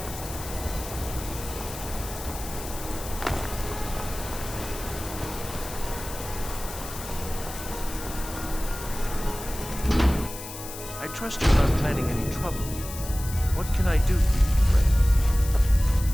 trust you're not planning any trouble. What can I do for you, friend?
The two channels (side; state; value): left; noise; hiss, 11 dB below the sound